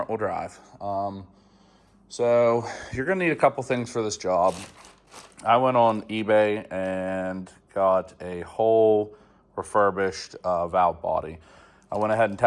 wheel drive. So you're going to need a couple things for this job. I went on eBay and got a whole refurbished valve body. I went ahead and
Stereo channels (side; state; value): both; identical; correlation 1.00